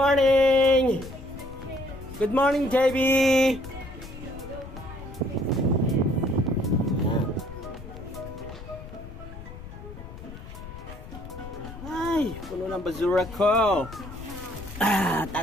Good morning, JB. Ay, puno ng basura ko.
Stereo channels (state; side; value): noise; left; rumble, 13 dB below the sound